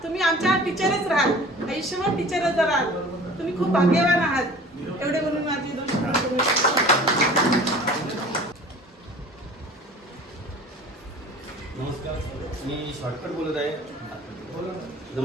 तुम्ही आमच्या टीचरच राहाल, आयुष्यभर टीचरच राहाल. तुम्ही खूप भाग्यवान आहात. एवढे म्हणून माझी 2 शब्द. नमस्कार, मी शॉर्टकट बोलत आहे.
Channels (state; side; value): normal; both; correlation 0.44